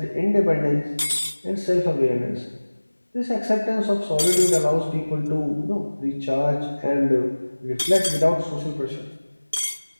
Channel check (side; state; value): both; inverted; correlation -1.00